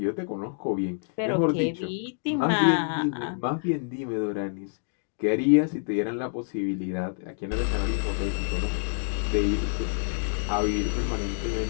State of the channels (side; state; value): right; silent; digital silence